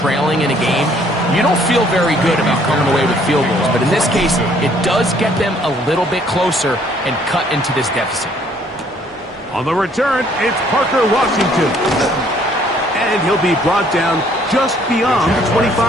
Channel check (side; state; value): both; normal; correlation 0.62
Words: in a game, you don't feel very good about coming away with field goals. But in this case, it does get them a little bit closer and cut into this deficit. On the return, it's Parker Washington. And he'll be brought down just beyond the